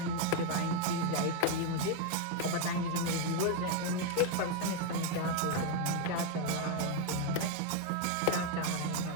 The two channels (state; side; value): different; both; correlation 0.01